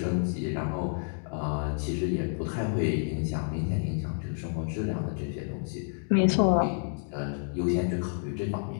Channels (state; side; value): silent; right; digital silence